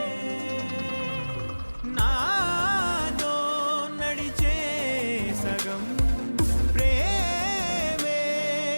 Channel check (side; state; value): both; inverted; correlation -1.00